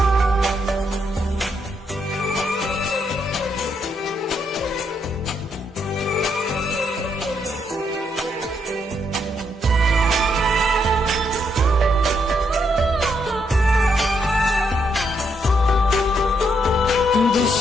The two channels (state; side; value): normal; both; correlation 0.76